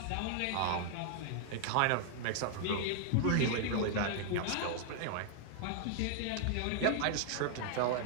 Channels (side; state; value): both; different; correlation 0.00